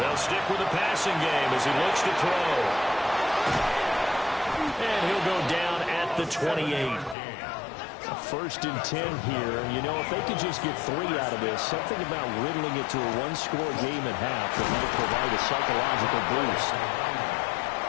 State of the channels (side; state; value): right; drops out; at 7.2 s